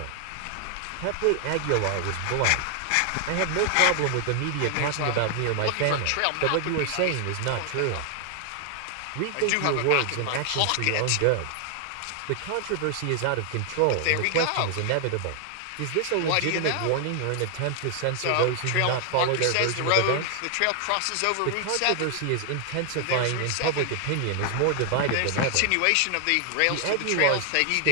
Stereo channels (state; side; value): different; both; correlation 0.00